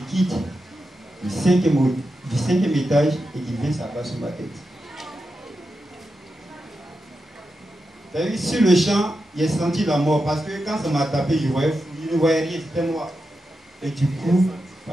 du cinquième étage et qui vient s'abattre sur ma tête. Sur le champ, j'ai senti la mort parce que quand ça m'a tapé, je ne voyais rien, c'était noir. Et du coup,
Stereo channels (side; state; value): both; normal; correlation 0.89